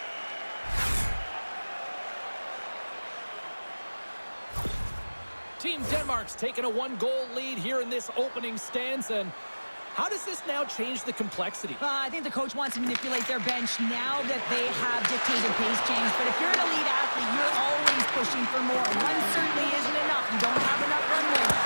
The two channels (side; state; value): both; inverted; correlation -1.00